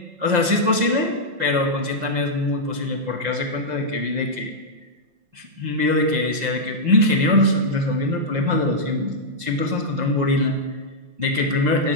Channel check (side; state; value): left; late; 5.7 ms